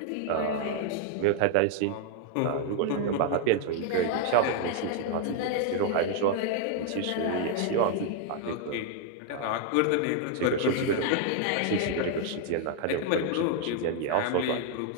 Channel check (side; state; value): both; different; correlation 0.00